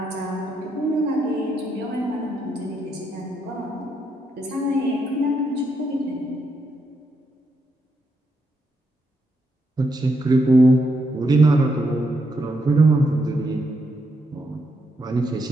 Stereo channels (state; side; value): normal; both; correlation 0.79